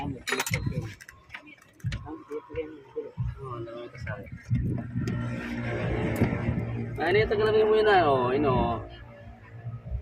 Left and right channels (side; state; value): both; identical; correlation 1.00